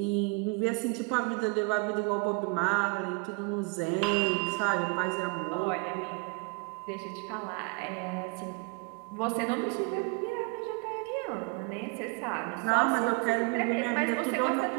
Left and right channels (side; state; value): left; quieter; 30.4 dB